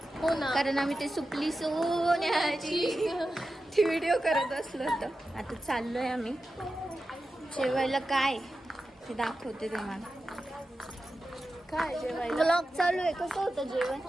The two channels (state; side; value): normal; both; correlation 0.92